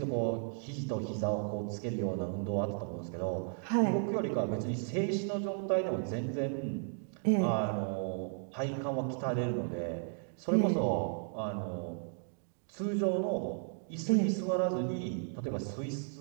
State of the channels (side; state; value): left; silent; 55 dB below the other